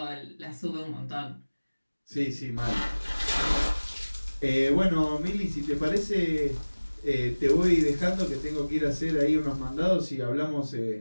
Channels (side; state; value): both; inverted; correlation -1.00